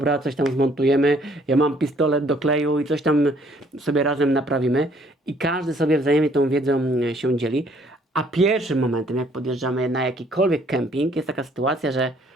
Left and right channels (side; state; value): both; normal; correlation 0.62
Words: coś tam zmontujemy, ja mam pistolet do kleju i coś tam sobie razem naprawimy. I każdy sobie wzajemnie tą wiedzą się dzieli. A pierwszym momentem, jak podjeżdżamy na jakikolwiek kemping, jest taka sytuacja, że